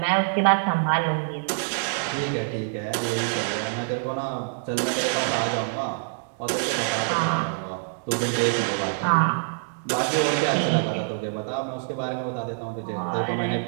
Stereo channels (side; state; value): left; silent; 61 dB below the other